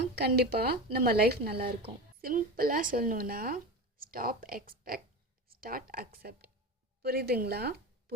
கண்டிப்பாக நம்ம லைஃப் நல்லாயிருக்கும். சிம்பிளாக சொல்லணுன்னா ஸ்டாப் எக்ஸ்பெக்ட், ஸ்டார்ட் அக்செப்ட். புரியுதுங்களா?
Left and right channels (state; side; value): normal; both; correlation 0.25